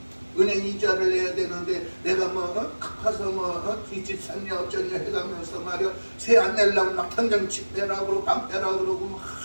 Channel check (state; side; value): inverted; both; correlation -1.00